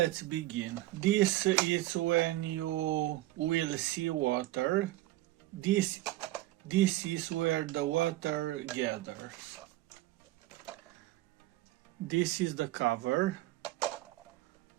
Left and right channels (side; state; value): left; quieter; 16.8 dB